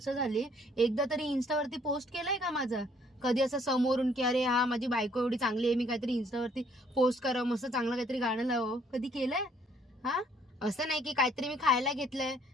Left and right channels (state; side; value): normal; both; correlation 0.64